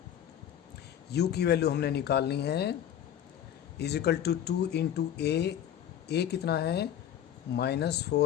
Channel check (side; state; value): right; quieter; 10.2 dB